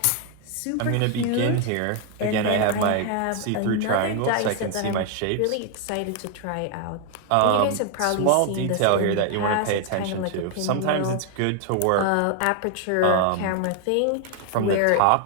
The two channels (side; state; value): both; different; correlation 0.00